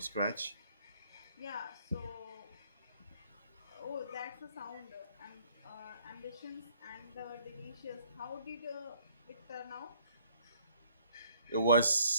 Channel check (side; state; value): both; inverted; correlation -0.62